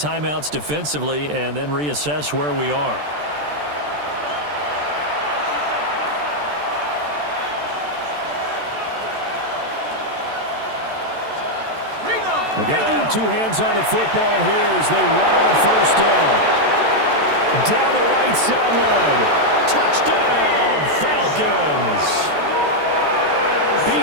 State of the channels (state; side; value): late; left; 14 ms